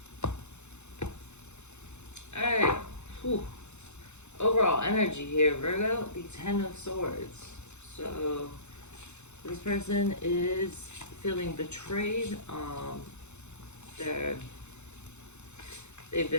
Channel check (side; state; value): right; late; 0.82 ms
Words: energy here, Virgo, the Ten of Swords. So this person is feeling betrayed. They've